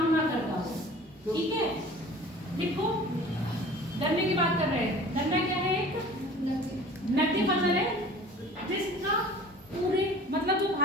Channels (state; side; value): normal; both; correlation 0.45